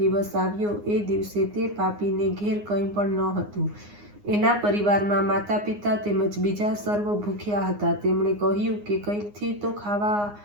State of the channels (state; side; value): late; left; 9.7 ms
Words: आव्यो। ए दिवसे ते पापीने घेर कंई पण न हतुं। एना परिवारमां माता पिता तेमज बीजा सर्व भूख्या हता। तेमणे कह्युं के कंईकथी तो खावा